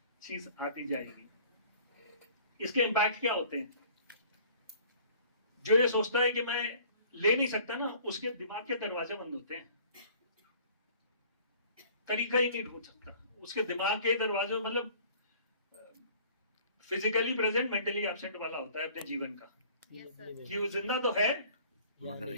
चीज आती जाएगी। इसके इम्पैक्ट क्या होते हैं? जो ये सोचता है कि मैं ले नहीं सकता ना, उसके दिमाग के दरवाजे बंद होते हैं, तरीका ही नहीं ढूंढ सकता। उसके दिमाग के दरवाजे, मतलब फिजिकली प्रेजेंट मेंटली एब्सेंट वाला होता है अपने जीवन का, Yes, sir. कि वो जिंदा तो है मगर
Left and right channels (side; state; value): both; inverted; correlation -0.51